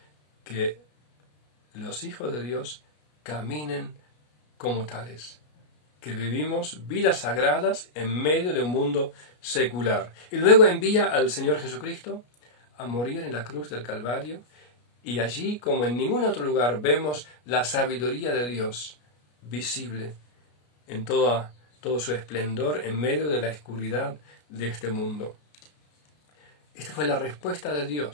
que los hijos de Dios caminen como tales, que vivimos vidas sagradas en medio de un mundo secular. Y luego envía al Señor Jesucristo a morir en la cruz del Calvario, y allí, como en ningún otro lugar, vemos la sabiduría de Dios visible en todo su esplendor en medio de la oscuridad de este mundo. Esta fue la respuesta de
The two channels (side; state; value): right; late; 33 ms